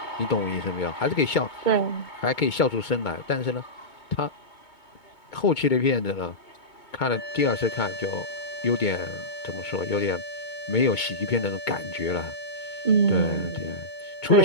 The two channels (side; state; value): right; late; 2.2 ms